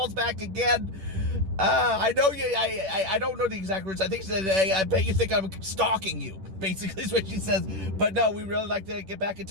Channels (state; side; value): late; left; 10 ms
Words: back again. I know you. I don't know the exact words. I think she said, "Hey, I bet you think I'm stalking you." Basically, is what she says. But no, we really like to get back in